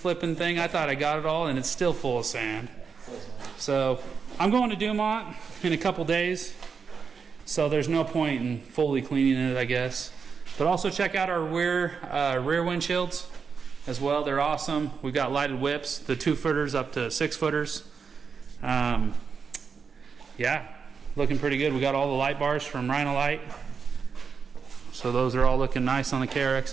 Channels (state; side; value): quieter; left; 5.8 dB